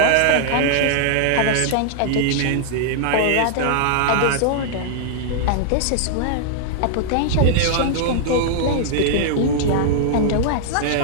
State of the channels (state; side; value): different; both; correlation -0.01